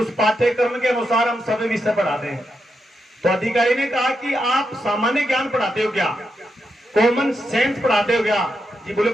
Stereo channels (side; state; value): both; normal; correlation 0.84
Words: पाठ्यक्रम के अनुसार हम सभी विषय पढ़ाते हैं। तो अधिकारी ने कहा कि आप सामान्य ज्ञान पढ़ाते हो क्या, कॉमन सेंस पढ़ाते हो क्या? जी बोले